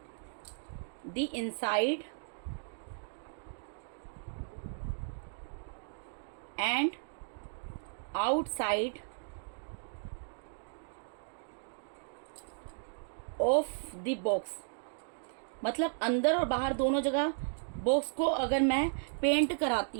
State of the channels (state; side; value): silent; left; digital silence